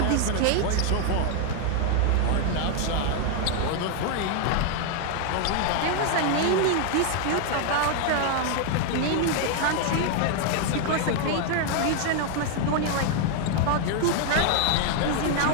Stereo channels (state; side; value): different; both; correlation 0.00